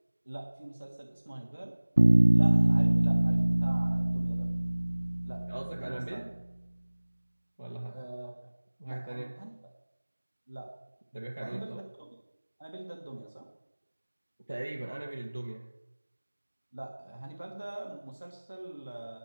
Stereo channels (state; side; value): inverted; both; correlation -1.00